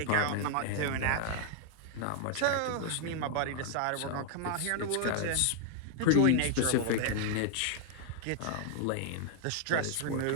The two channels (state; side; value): different; both; correlation 0.00